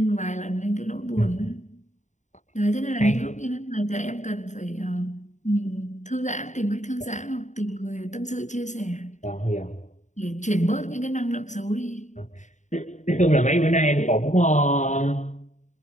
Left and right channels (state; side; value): late; right; 0.35 ms